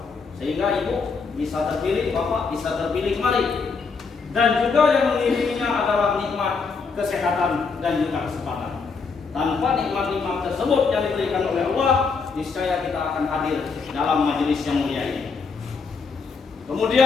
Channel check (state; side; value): quieter; right; 4.9 dB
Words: Sehingga ibu bisa terpilih, bapak bisa terpilih kembali. Dan juga yang mengiringinya adalah nikmat kesehatan dan juga kesempatan. Tanpa nikmat-nikmat tersebut yang diberikan oleh Allah, niscaya kita akan hadir dalam majelis yang mulia ini.